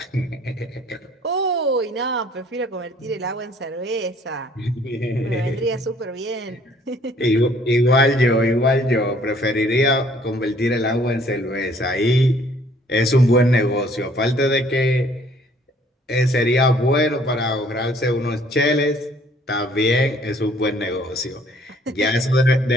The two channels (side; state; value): both; normal; correlation 0.59